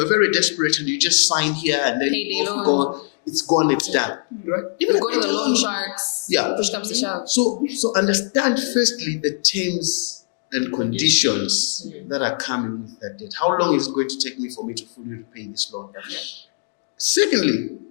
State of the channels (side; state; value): right; silent; digital silence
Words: are very desperate and you just sign here and then it's gone, it's done, right? You go to the loan sharks, push comes to shove. So understand firstly the terms and conditions that are coming with that debt. How long is it going to take me for me to fully repay this loan? Okay. Secondly,